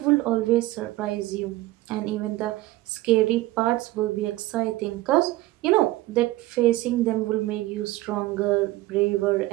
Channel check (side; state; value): left; quieter; 17.8 dB